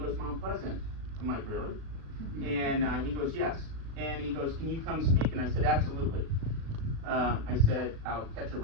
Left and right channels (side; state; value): left; late; 37 ms